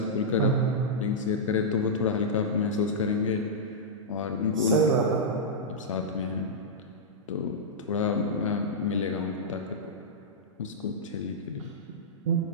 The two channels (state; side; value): normal; both; correlation -0.11